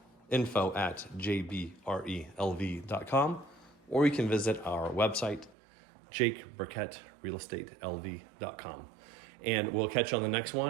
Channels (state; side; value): drops out; left; at 5.5 s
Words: info@jbrelv.com, or you can visit our website, jakeburkettrealestatelv.com. And we'll catch you on the next